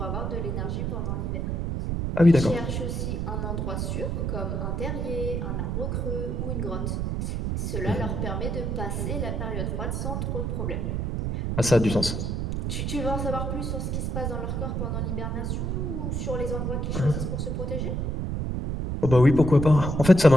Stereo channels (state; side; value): noise; right; rumble, 1 dB below the sound